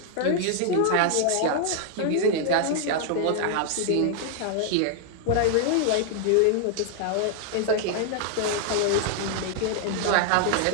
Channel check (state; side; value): different; both; correlation 0.00